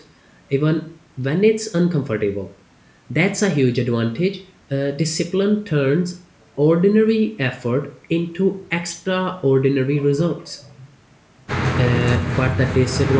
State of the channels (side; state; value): both; identical; correlation 1.00